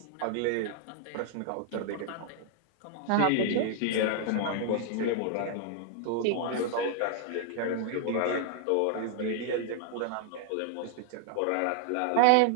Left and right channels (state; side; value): different; both; correlation 0.00